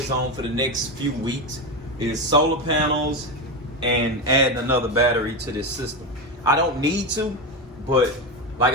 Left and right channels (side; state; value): both; normal; correlation 0.15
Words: on for the next few weeks, is solar panels and adding another battery to this system. I don't need to, but like